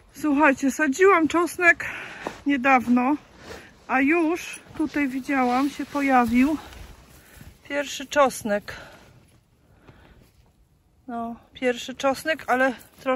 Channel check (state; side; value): identical; both; correlation 1.00